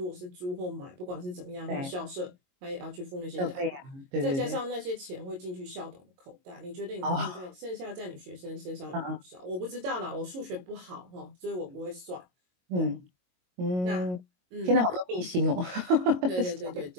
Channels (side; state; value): left; late; 22 ms